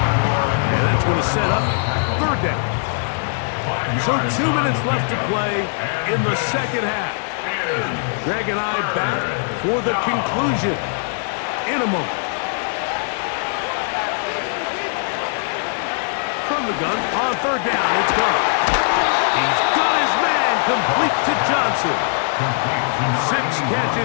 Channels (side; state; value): right; silent; digital silence